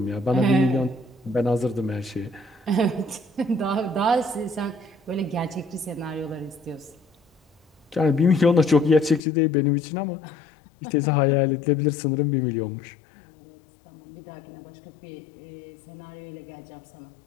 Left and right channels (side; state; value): right; drops out; at 9.2 s